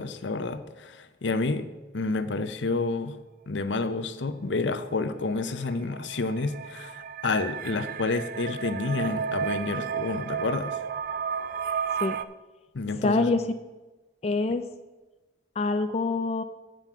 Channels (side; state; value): both; normal; correlation 0.23